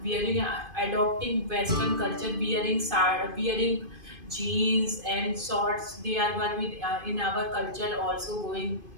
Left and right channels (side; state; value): left; late; 2.5 ms